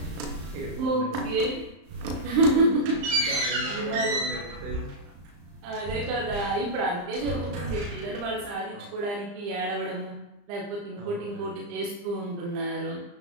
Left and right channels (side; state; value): left; late; 35 ms